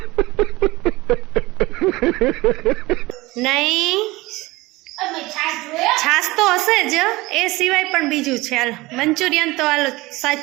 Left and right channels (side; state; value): left; quieter; 20.7 dB